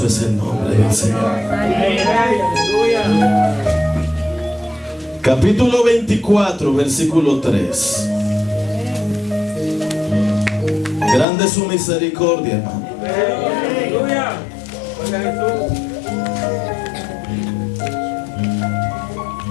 es el nombre del Señor. Capítulo 24, versículo 3. Grande es su misericordia, hermano.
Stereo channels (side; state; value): right; drops out; at 11.2 s